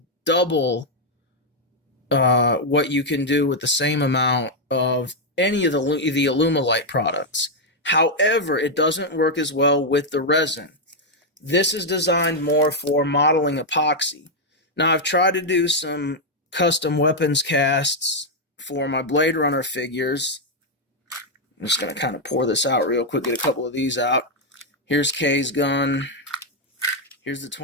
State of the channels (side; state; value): both; normal; correlation 0.00